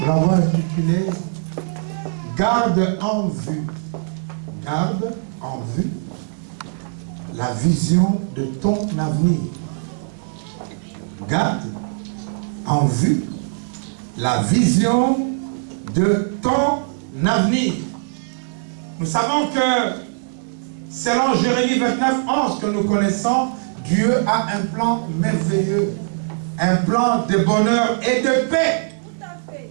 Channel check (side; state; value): left; silent; digital silence